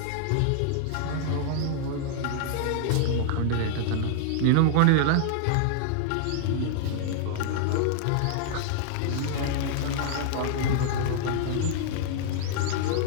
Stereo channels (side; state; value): both; different; correlation -0.01